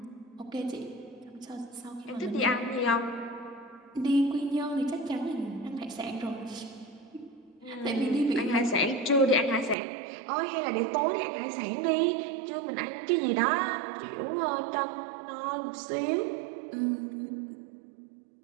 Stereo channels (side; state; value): left; drops out; at 9.8 s